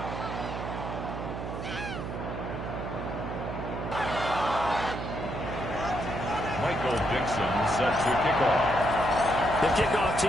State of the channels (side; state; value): right; noise; hum, 6 dB below the sound